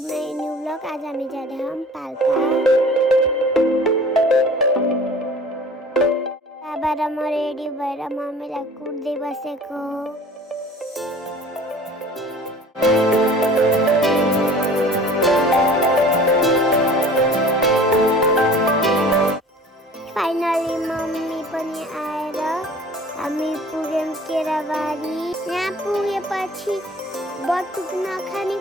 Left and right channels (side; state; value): both; normal; correlation 0.45